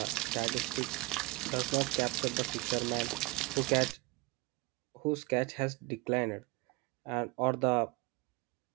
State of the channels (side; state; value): left; quieter; 23.5 dB